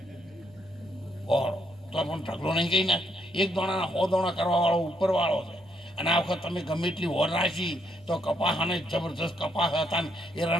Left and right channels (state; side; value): noise; right; hum, 26 dB below the sound